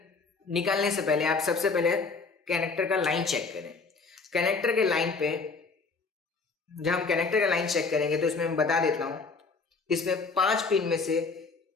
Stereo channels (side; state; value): right; quieter; 4.4 dB